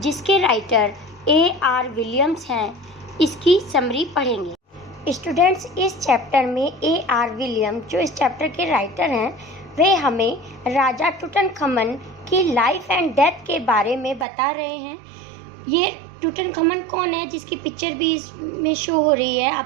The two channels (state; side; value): drops out; left; at 14.2 s